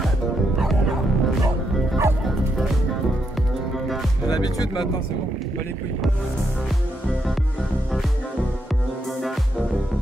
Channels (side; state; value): both; normal; correlation 0.80